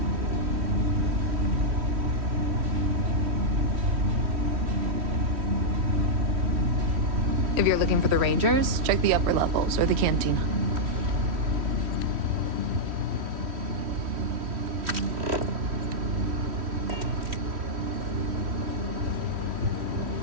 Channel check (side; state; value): left; late; 3.1 ms